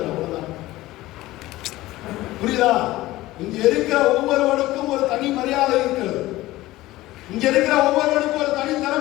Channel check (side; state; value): right; quieter; 17.4 dB